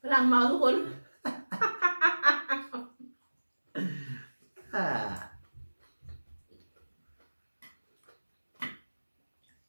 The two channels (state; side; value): inverted; both; correlation -1.00